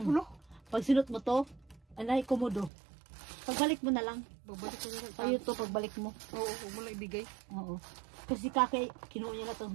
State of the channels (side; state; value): left; drops out; at 2.7 s